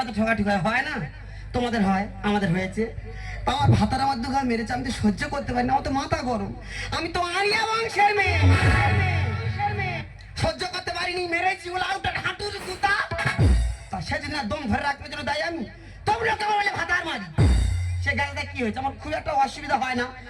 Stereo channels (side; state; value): both; identical; correlation 1.00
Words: তো ঠোকাঠুকি হয় না, তোমাদের হয় আমাদের হয়েছে। আমার ভাতার আমার দুঘা মেরেছে, আমি তো সহ্য করতে পারি না, আমার তো মাথা গরম, আমি তো আরিয়া বংশের মেয়ে, সহ্য করতে পারিনি, মেরেছি বলে আউটার হাঁটুর গুতা। তা সেদিন দম ধরে রাখবে জন্য দায় আমি, তোমরা কেমন বলে ভাতার মারি। সে গেলে কি হয়েছে, আমার খুব একটা অসুবিধা হয় না,